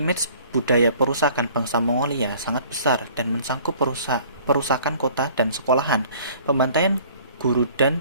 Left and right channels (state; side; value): inverted; both; correlation -0.52